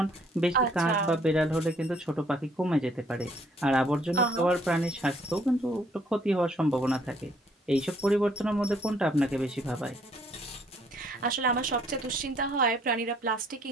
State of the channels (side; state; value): both; normal; correlation 0.64